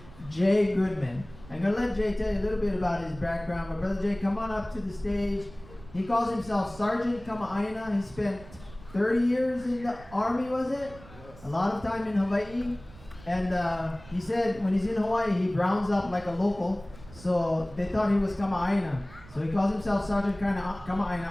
Jay Goodman. I'm going to let Jay tell you a little bit about his background. But Brother Jay, come on up to the stage. He calls himself Sergeant Kamaaina. He spent 30 years in the Army, was it? Yes. A lot of time in Hawaii. And he said when he's in Hawaii, he browns up like a local. So they thought he was Kamaaina. So he calls himself Sergeant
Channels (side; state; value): right; noise; rumble, 20 dB below the sound